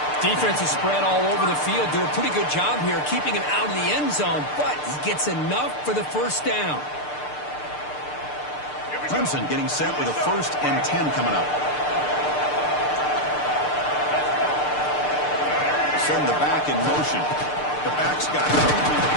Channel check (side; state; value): right; late; 6.7 ms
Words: Defense is spread all over the field. Do a pretty good job here keeping him out of the end zone, but he gets enough for the first down. Clemson getting set with a 1st and 10 coming up. Send the back in motion. The back's got it.